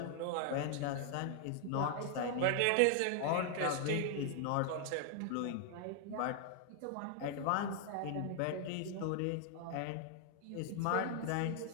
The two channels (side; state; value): both; different; correlation 0.00